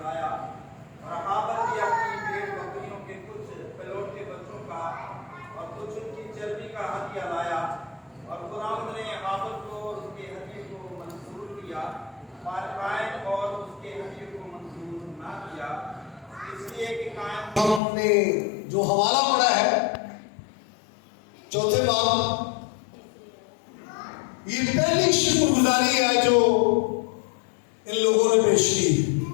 लाया और हाबल भी अपनी भेड़ बकरियों के कुछ पलोट के बच्चों का और कुछ उनकी चर्बी का हत्या लाया। और खुदावंद ने हाबल को और उसके हत्या को मंजूर किया, पर कायन और उसके हत्या को मंजूर ना किया, इसलिए कि कायन। हमने जो हवाला पढ़ा है 4वें बाब, ये पहली शुक्रगुजारी है जो इन लोगों ने पेश की।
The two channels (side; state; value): right; drops out; at 17.8 s